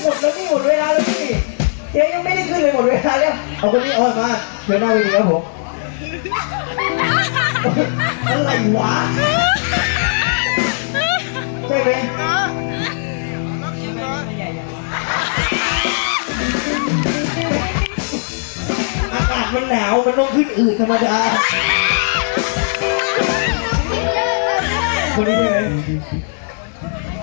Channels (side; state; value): right; silent; 68 dB below the other